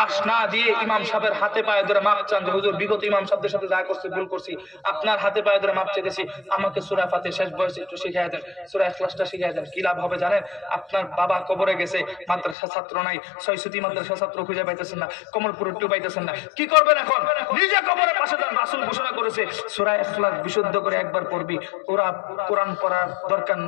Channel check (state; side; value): drops out; right; at 12.6 s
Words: না দিয়ে ইমাম সাহেবের হাতে পায়ে ধরে মাপ চান যে হুজুর বিগত ইমাম সাহেবদের সাথে যা করছি ভুল করছি, আপনার হাতে পায়ে ধরে মাপ চেয়েছি, আমাকে সূরা ফাতিহা শেষ বয়সে একটু শিখিয়ে দেন, সূরা ইখলাসটা শিখিয়ে দেন। কি লাভ হবে জানেন? আপনার বাবা কবরে গেছে, মাদ্রাসা ছাত্র নাই, ছয়সুতি মাদ্রাসা ছাত্র খুঁজে পাইতেছেন না, কমলপুর একটু পাইতেছেন না, কি করবেন এখন? নিজে কবরের পাশে যান। রাসূল ঘোষণা করেছে সূরা ইখলাস বিশুদ্ধ করে একবার পড়বি, কোরআন পড়ার দরকার